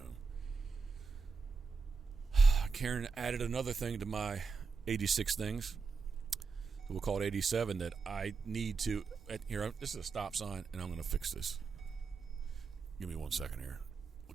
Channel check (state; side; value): quieter; left; 4.8 dB